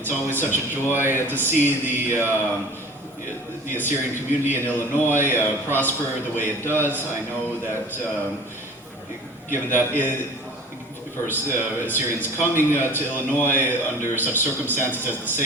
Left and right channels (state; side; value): normal; both; correlation 0.43